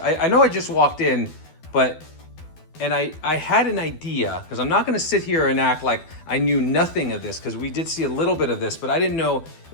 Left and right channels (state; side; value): late; right; 12 ms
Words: know I just walked in, and I had an idea, because I'm not going to sit here and act like I knew nothing of this, because we did see a little bit of this, but I didn't know